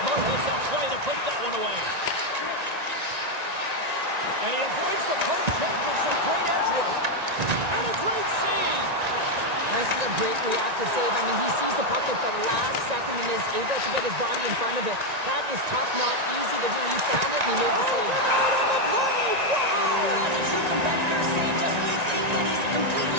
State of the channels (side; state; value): left; late; 1.9 ms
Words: hits that play to put that one away. And he avoids the poke check with some great edge work. And a great save. This is a great reactive save. I mean, he sees the puck at the last second and is able to get his body in front of it. That is tough, not easy to do. He found it and he made the save. Out on the play! Wow! That's a true competitor save. Just when you think that he's